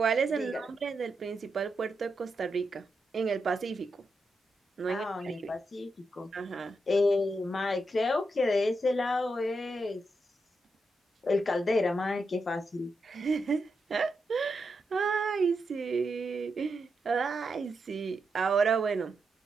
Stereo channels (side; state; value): both; normal; correlation 0.85